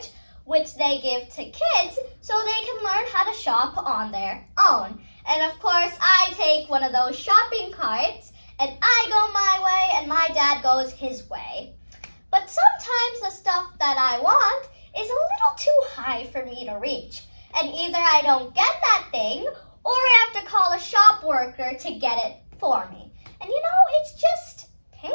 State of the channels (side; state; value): both; inverted; correlation -1.00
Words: which they give to kids so they can learn how to shop on their own. And of course, I take one of those shopping carts and I go my way and my dad goes his way. But sometimes the stuff that I want is a little too high for me to reach. And either I don't get that thing or I have to call a shop worker to get it for me. And it's just